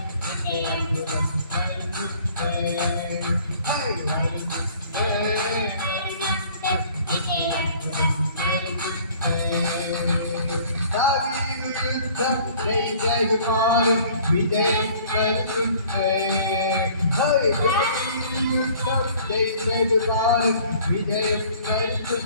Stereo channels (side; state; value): both; inverted; correlation -0.53